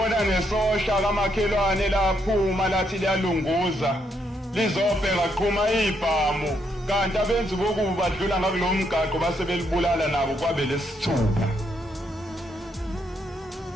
nesosha kamakhelwane laphuma lathi liyalunguza lizobheka qhuma ibhamu kanti abenzi bokuba badlula ngakulo mgaqo base belibulala nabo kwabe lesithupha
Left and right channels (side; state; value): both; normal; correlation 0.76